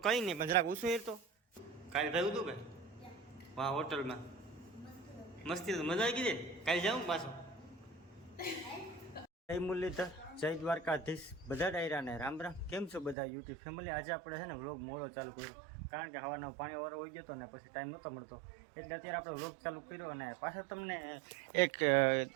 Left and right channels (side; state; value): left; drops out; at 13.2 s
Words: કઈ નહીં પણ જરાક ઉસું હેરતો કાલે થયું હતું કે વાહ હોટલમાં મસ્તી તો મજા આવી ગઈ કાલે જાઉં પાછો જય મુરલીધર જય દ્વારકાધીશ બધા ડાયરાને રામ રામ. કેમ છો બધા યુટ્યુબ ફેમિલી? આજે આપણે છે ને વ્લોગ મોડો ચાલુ કર્યો કારણ કે હવાનો પાણી વાળો હોઈ ગયો હતો ને પછી ટાઈમ નહોતો મળતો એટલે અત્યારે આપણે વ્લોગ ચાલુ કર્યો અને પાછળ તમને એક